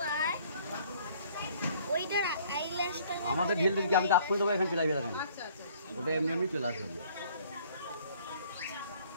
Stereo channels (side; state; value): both; inverted; correlation -0.58